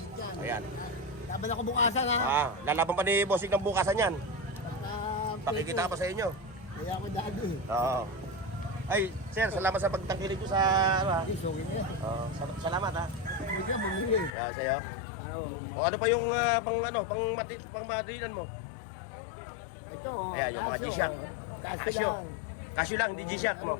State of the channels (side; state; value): right; drops out; at 14.3 s